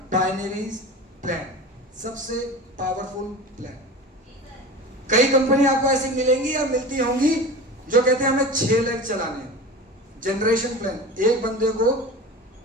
binary plan, सबसे पावरफुल प्लान। कई कंपनी आपको ऐसी मिलेंगी या मिलती होंगी जो कहते हैं हमें 6 लाख चलाने हैं, जनरेशन प्लान, एक बंदे को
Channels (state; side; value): normal; both; correlation 0.33